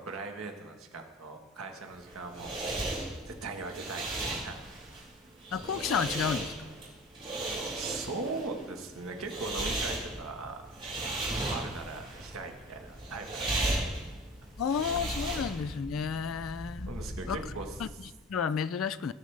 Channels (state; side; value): normal; both; correlation 0.39